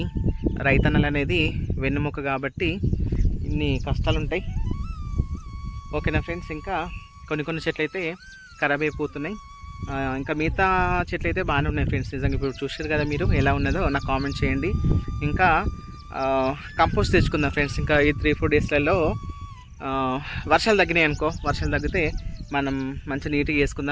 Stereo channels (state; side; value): identical; both; correlation 1.00